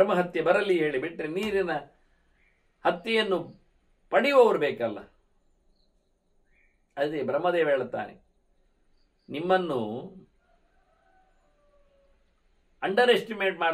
ಬರಲಿ ಹೇಳಿಬಿಟ್ರೆ ನೀರಿನ ಹತ್ಯೆಯನ್ನು ಪಡೆಯುವವರು ಬೇಕಲ್ಲ. ಅದೇ ಬ್ರಹ್ಮದೇವ ಹೇಳುತ್ತಾನೆ, ನಿಮ್ಮನ್ನು ಅಂಡರ್ ಎಸ್ಟಿಮೇಟ್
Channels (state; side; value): identical; both; correlation 1.00